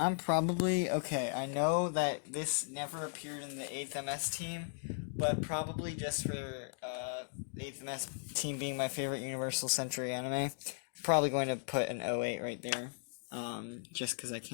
probably, okay, I know that this never appeared in the 8th MS team, but probably just for the 8th MS team being my favorite Universal Century anime, I'm probably going to put an 08 right there, just because I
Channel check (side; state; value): right; silent; digital silence